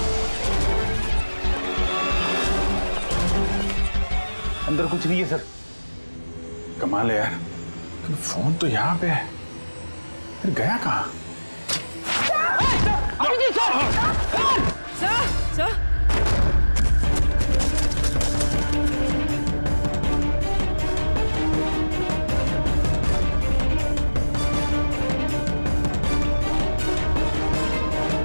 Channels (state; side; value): inverted; both; correlation -1.00